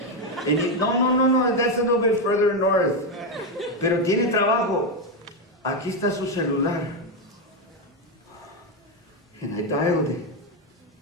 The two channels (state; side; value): normal; both; correlation 0.07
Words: And you, no, that's a little bit further north. Pero tiene trabajo. Aquí está su celular. And I dialed it.